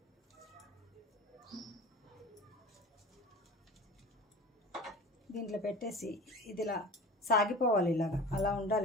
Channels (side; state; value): both; normal; correlation 0.37